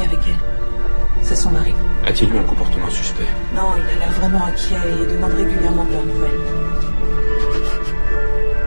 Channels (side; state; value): both; inverted; correlation -1.00